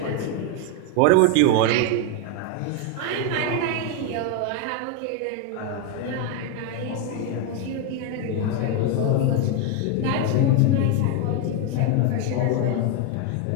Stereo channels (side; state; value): both; different; correlation 0.01